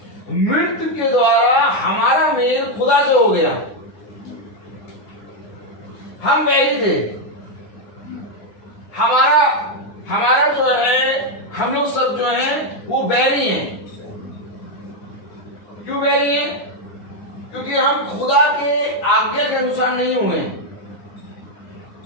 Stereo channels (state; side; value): late; right; 9.8 ms